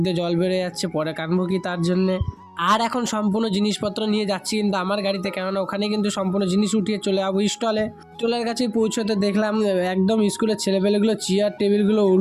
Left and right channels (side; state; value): both; identical; correlation 1.00